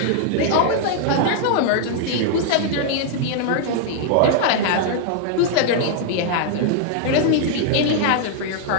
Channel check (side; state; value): both; different; correlation -0.01